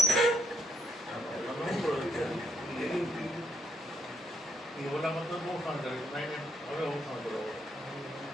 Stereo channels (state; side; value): normal; both; correlation 0.75